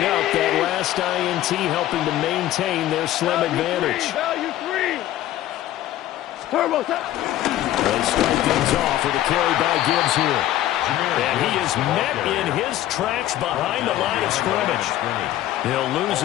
up. That last INT helping to maintain their slim advantage. Value 3. Turbo. They start things off with a carry by Gibbs here. And he is met in his tracks behind the line of scrimmage. He'll lose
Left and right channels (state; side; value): quieter; right; 13.7 dB